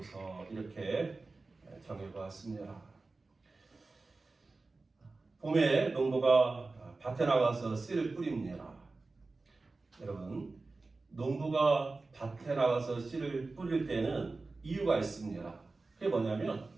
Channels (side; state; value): left; quieter; 3.6 dB